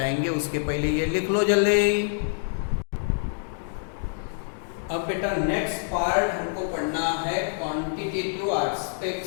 उसके पहले ये लिख लो जल्दी। अब बेटा नेक्स्ट पार्ट हमको पढ़ना है क्वांटिटेटिव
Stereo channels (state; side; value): silent; right; digital silence